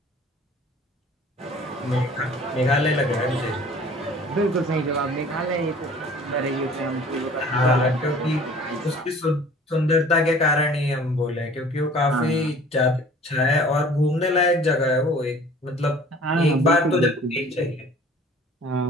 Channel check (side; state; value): both; normal; correlation 0.49